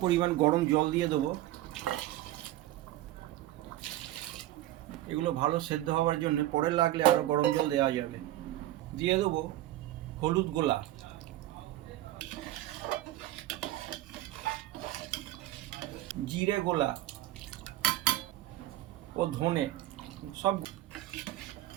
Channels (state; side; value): quieter; left; 14.8 dB